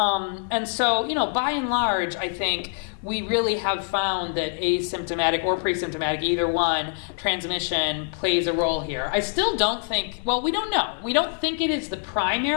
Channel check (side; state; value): right; silent; 55 dB below the other